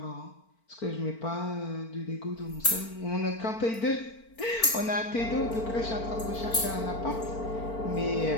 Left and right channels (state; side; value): late; right; 4.4 ms